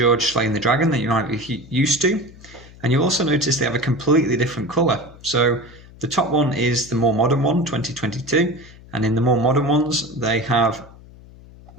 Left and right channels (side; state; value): left; noise; hum, 21 dB below the sound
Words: slaying the dragon that you might be used to, and you'll also notice they have a completely different colour. So the top one is the more modern one, 2022, and in the more modern ones they have